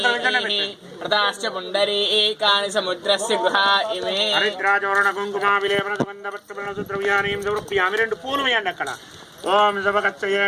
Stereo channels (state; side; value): identical; both; correlation 1.00